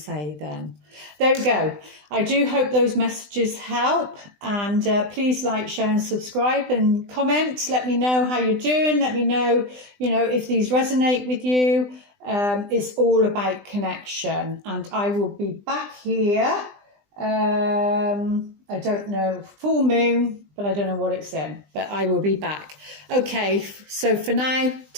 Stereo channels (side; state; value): left; late; 20 ms